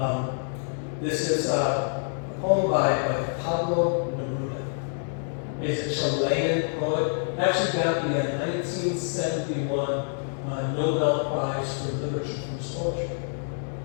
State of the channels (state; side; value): silent; right; 60 dB below the other